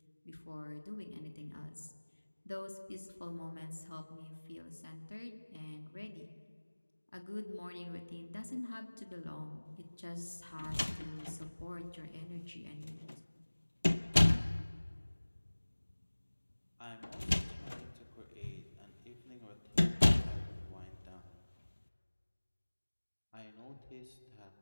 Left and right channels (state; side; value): inverted; both; correlation -1.00